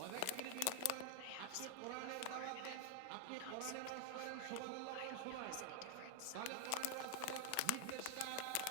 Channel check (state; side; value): different; both; correlation 0.00